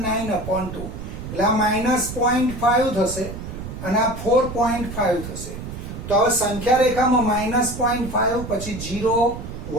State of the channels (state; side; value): noise; right; rumble, 9 dB below the sound